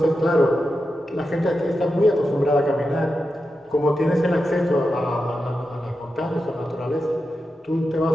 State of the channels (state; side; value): normal; both; correlation 0.89